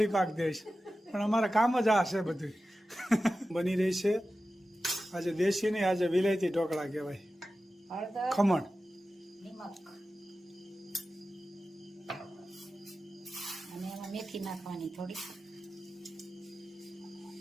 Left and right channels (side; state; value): both; normal; correlation 0.94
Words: પાક દઈશ, પણ અમારે કામ જ આ છે બધું. બની રહી છે આજે દેશી નહીં, આજે વિલાયતી ઢોકળા કહેવાય. હળદર, ખમણ, નિમક અને એમાં મેથી નાખવાની થોડી.